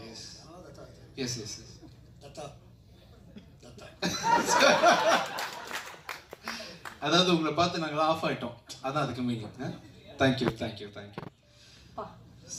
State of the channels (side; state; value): both; identical; correlation 1.00